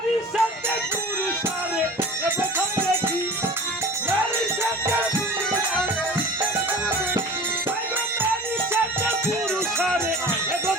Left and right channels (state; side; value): normal; both; correlation 0.39